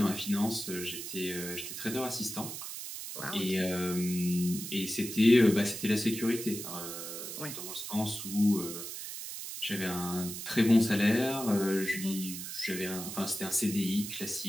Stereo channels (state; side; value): noise; right; hiss, 8 dB below the sound